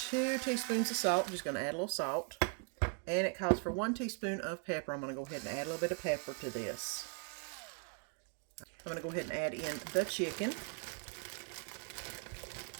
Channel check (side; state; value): left; quieter; 38.8 dB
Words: teaspoons of salt. I'm just going to add a little salt. And it calls for 1 teaspoon of pepper. I'm going to go ahead and add a little bit of pepper to this. I'm going to go ahead and add in the chicken,